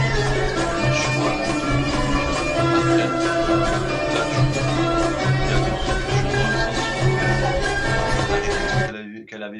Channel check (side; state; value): both; identical; correlation 1.00